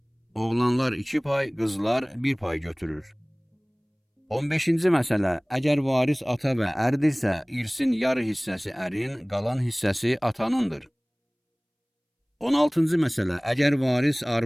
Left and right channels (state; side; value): identical; both; correlation 1.00